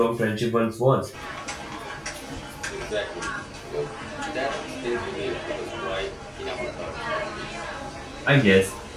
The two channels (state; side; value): identical; both; correlation 1.00